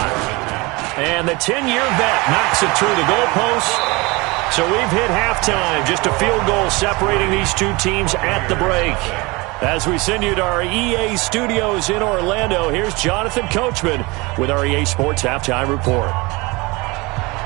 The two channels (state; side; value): quieter; left; 24.8 dB